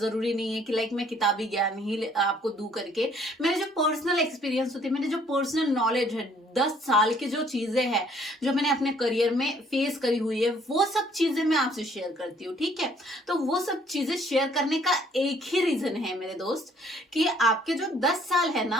जरूरी नहीं है कि लाइक मैं किताबी ज्ञान ही आपको दूं करके। मेरे जो पर्सनल एक्सपीरियंस होती है, मेरे जो पर्सनल नॉलेज है, 10 साल की जो चीजें हैं, जो मैंने अपने करियर में फेस करी हुई है, वो सब चीजें मैं आपसे शेयर करती हूँ। ठीक है, तो वो सब चीजें शेयर करने का एक ही रीजन है मेरे दोस्त, कि आपके जो 10 साल है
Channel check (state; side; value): normal; both; correlation 0.61